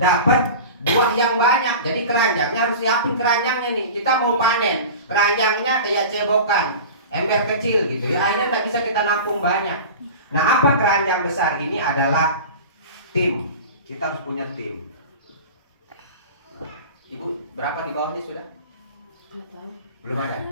buah yang banyak, jadi keranjangnya harus siapin keranjangnya nih. Kita mau panen, keranjangnya kayak cebokan, ember kecil gitu ya. Akhirnya tak bisa kita nampung banyak. Nah, apa keranjang besar ini adalah tim. Kita harus punya tim. Ibu, berapa di bawahnya sudah? Belum ada.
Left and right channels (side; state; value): both; inverted; correlation -0.34